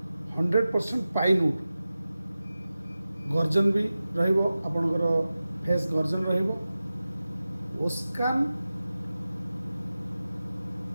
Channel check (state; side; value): inverted; both; correlation -0.95